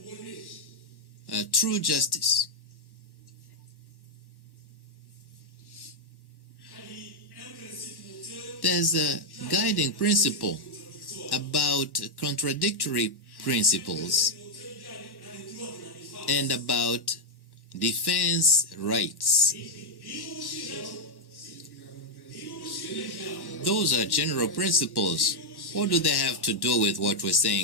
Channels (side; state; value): right; late; 1.1 ms